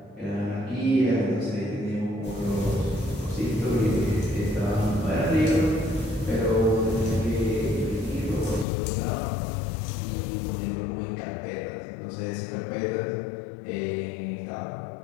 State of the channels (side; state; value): right; drops out; at 8.7 s